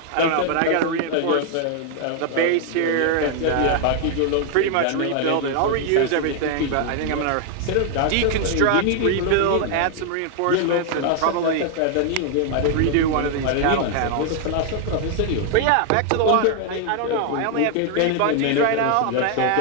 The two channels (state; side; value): different; both; correlation 0.00